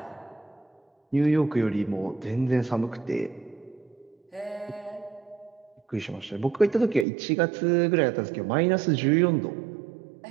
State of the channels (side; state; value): left; drops out; at 7.1 s